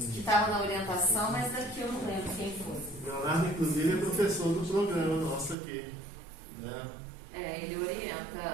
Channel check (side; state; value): left; drops out; at 5.6 s